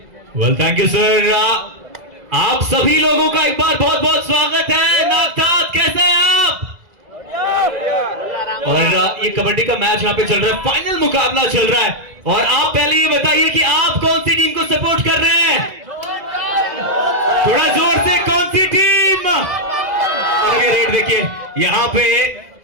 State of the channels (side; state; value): left; late; 2.0 ms